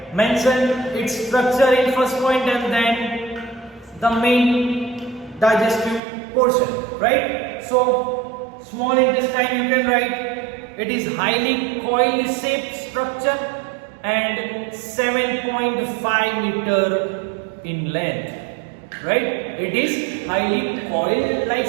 Mention its structure in first point and then the main digestive portion, right? So small intestine you can write, it is highly coil-shaped structure and 7.5 meter in length, right? It is highly coil-like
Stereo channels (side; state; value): left; drops out; at 6.0 s